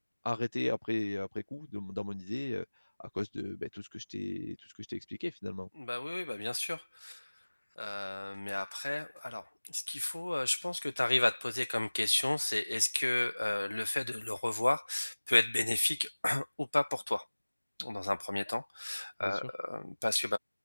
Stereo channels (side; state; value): both; inverted; correlation -1.00